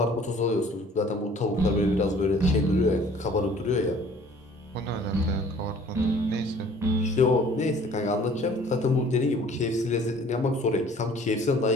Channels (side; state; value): both; normal; correlation 0.52